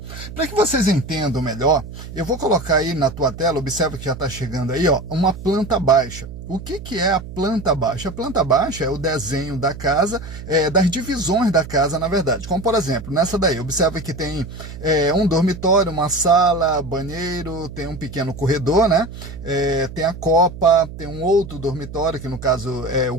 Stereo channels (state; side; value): noise; right; hum, 12 dB below the sound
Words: Para que vocês entendam melhor, eu vou colocar aí na tua tela, observe que já está chegando aí, ó, uma planta baixa. O que é a planta baixa? A planta baixa é o desenho da casa, das divisões da casa, na verdade. Como, por exemplo, nessa daí, observa que tem um dormitório, uma sala, banheiro, tem um pequeno corredor, né? Tem a copa, tem um outro dormitório, que no caso é o